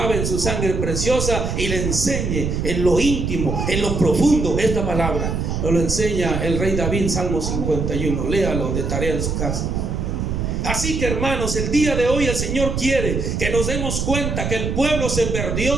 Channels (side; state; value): right; noise; rumble, 2 dB below the sound